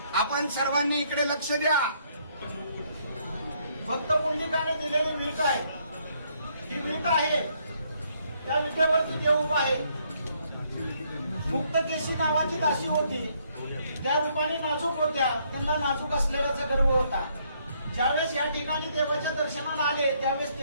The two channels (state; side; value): inverted; both; correlation -0.69